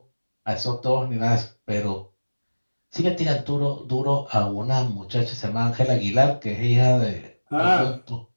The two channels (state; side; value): inverted; both; correlation -1.00